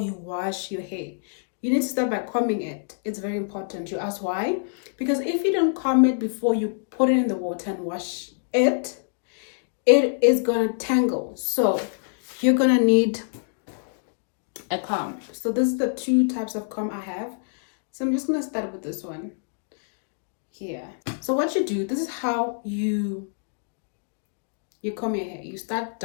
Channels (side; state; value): right; silent; digital silence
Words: you wash your hair, you need to start by combing it. It's very important. You ask why? Because if you don't comb it before you put it in the water and wash it, it is gonna tangle. So you're gonna need a comb. So this is the two types of comb I have. So I'm just gonna start with this one here. So what you do, this is how you comb your hair. You start